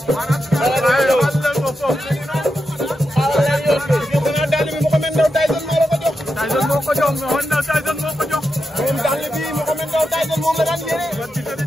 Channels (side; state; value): both; normal; correlation 0.87